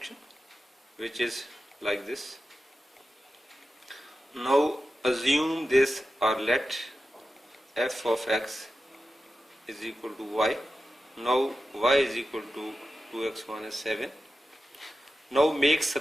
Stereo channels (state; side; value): normal; both; correlation 0.92